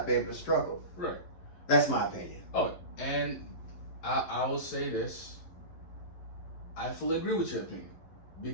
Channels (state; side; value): late; right; 11 ms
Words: be able to struggle. Right. That's my opinion. Oh, and I will say this. I fully agree with your opinion.